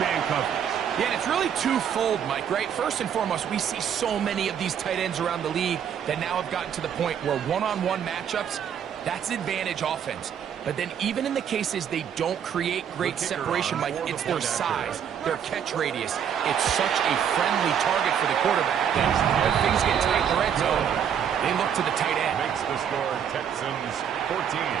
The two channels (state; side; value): quieter; left; 8.5 dB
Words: man coverage. Yeah, and it's really twofold, Mike, right? First and foremost, we see so many of these tight ends around the league that now have gotten to the point where one-on-one matchups, that's advantage offense. But then even in the cases they don't create great separation, Mike, it's their size, their catch radius. It's such a friendly target for the quarterback. When things get tight in the red zone, they look to the tight end. Makes the score Texans 14,